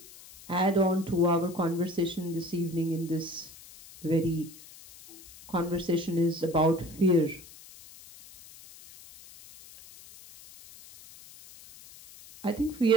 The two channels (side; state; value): left; noise; hiss, 20 dB below the sound